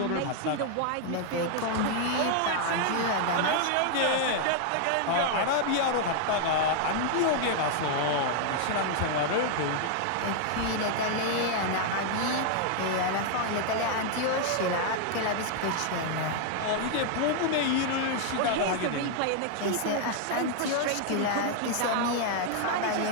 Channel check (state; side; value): different; both; correlation 0.00